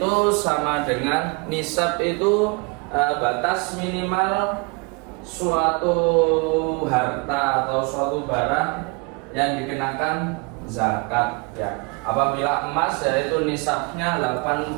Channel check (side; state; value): left; quieter; 29.7 dB